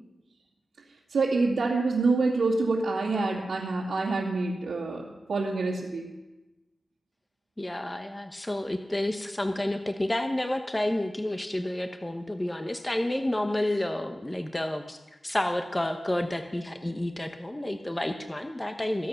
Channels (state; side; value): normal; both; correlation 0.93